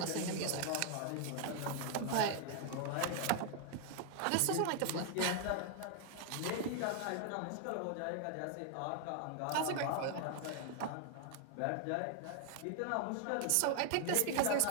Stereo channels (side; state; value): both; different; correlation 0.00